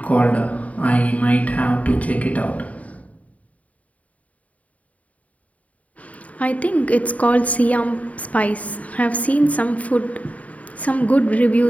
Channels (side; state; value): right; late; 0.069 ms